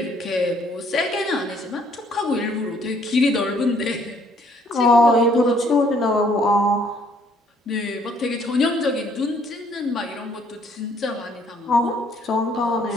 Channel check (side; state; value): both; normal; correlation 0.64